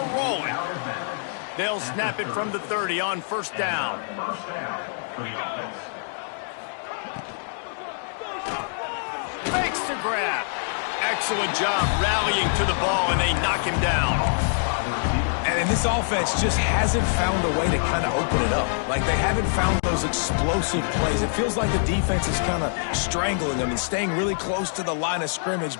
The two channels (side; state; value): right; silent; digital silence